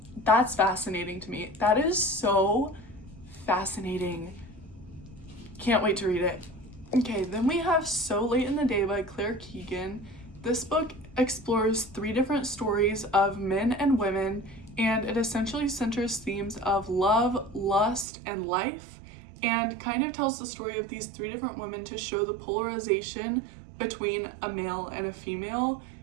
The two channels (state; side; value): drops out; left; at 18.1 s